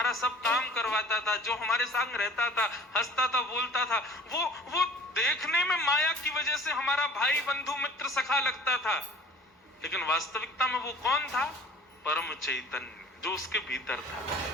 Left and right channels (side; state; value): both; normal; correlation 0.48